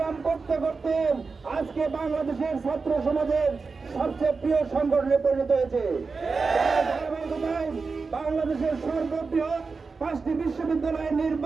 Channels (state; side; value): quieter; left; 4.5 dB